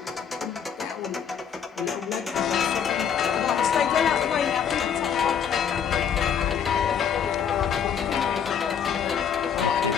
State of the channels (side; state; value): right; quieter; 7.8 dB